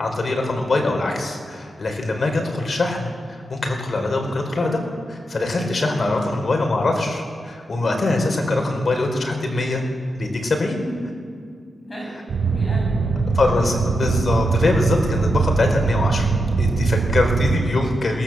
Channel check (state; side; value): normal; both; correlation 0.85